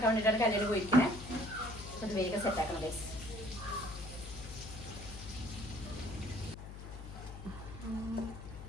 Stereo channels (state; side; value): noise; left; hum, 11 dB below the sound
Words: വേണ്ടിയിട്ടാണ് കല്യാണം പോയിരിക്കുന്നത്. അത് വേഗം സെറ്റാക്കണം കേസ്.